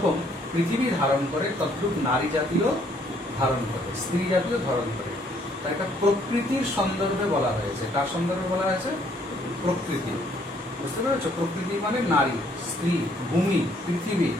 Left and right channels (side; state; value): both; normal; correlation 0.65